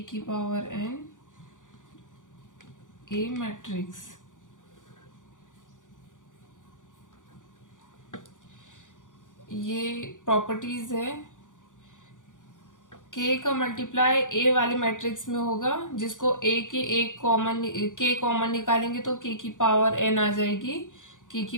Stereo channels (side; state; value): right; late; 0.87 ms